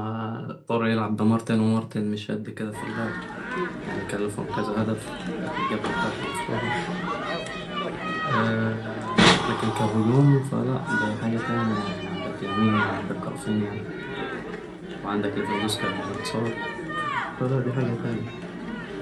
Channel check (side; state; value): both; identical; correlation 1.00